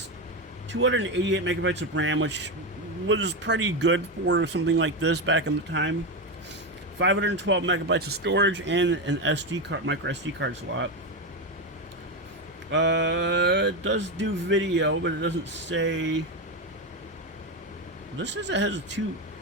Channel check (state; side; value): normal; both; correlation 0.12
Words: 288 megabytes of RAM, which was pretty good for something like this back in the time. 512 megabytes of storage and an SD card, micro SD card slot. It does do video, but it doesn't say. This says it has